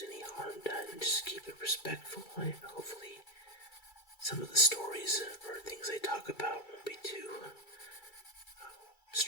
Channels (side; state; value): right; late; 2.3 ms